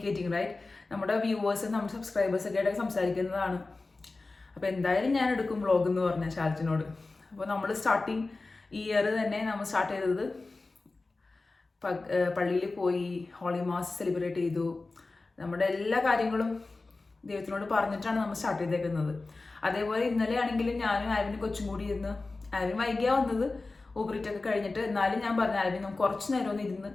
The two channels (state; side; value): quieter; right; 3.5 dB